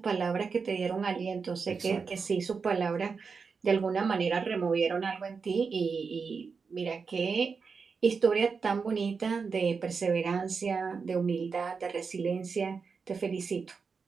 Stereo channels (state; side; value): quieter; left; 5.2 dB